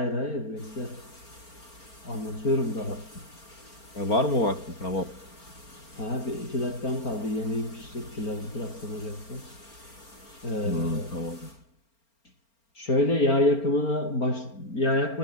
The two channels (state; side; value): late; right; 4.4 ms